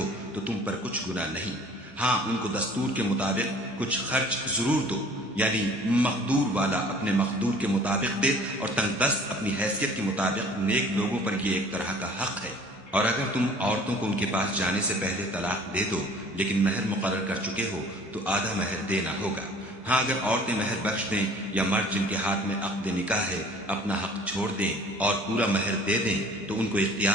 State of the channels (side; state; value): both; normal; correlation 0.50